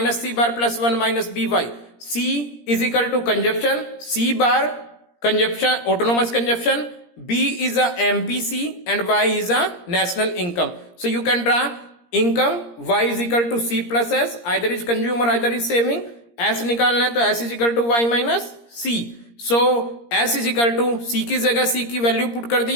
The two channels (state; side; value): late; right; 17 ms